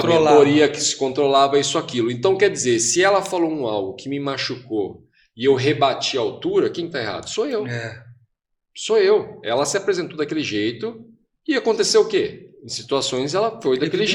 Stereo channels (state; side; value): identical; both; correlation 1.00